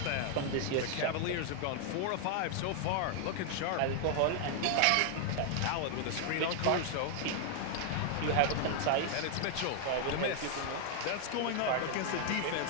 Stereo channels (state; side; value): different; both; correlation 0.00